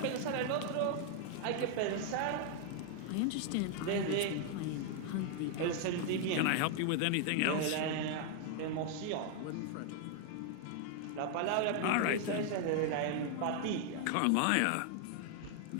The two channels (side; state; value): both; different; correlation 0.00